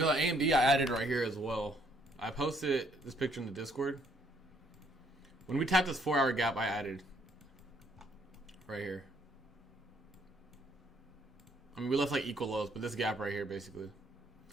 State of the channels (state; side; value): normal; both; correlation 0.67